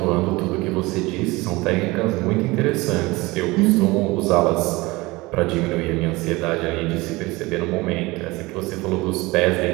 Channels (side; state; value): left; quieter; 22.0 dB